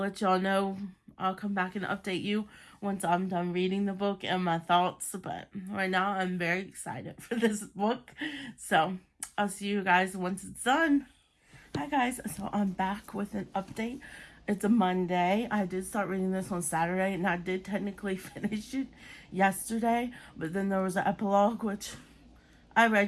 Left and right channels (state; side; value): identical; both; correlation 1.00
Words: y'all know. I'll come back and update you once I'm done reading the book and my thoughts. But right now, I'm very excited for this book. So I'll see you guys once it's done. Hi, guys. So I'm back with an update. It's a Monday. I did start reading this on Saturday, and I did technically finish it yesterday. But then there was an epilogue, which I